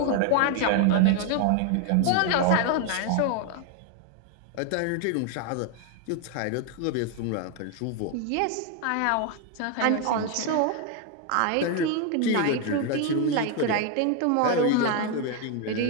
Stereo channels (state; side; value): different; both; correlation 0.01